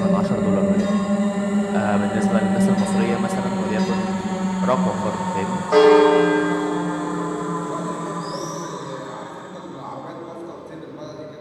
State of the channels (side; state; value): both; identical; correlation 1.00